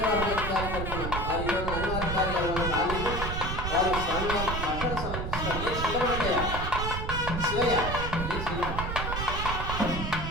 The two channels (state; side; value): noise; right; rumble, 4 dB below the sound